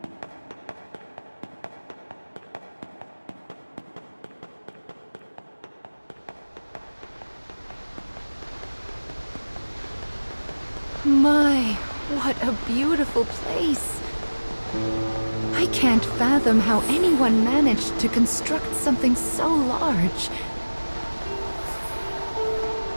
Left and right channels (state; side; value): inverted; both; correlation -1.00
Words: what a beautiful place. I can't fathom how anyone managed to construct something so large.